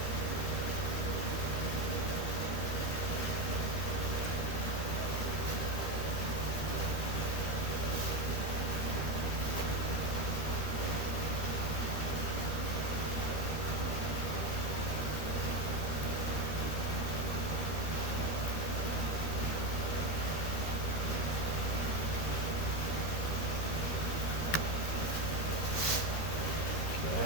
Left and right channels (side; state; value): right; late; 13 ms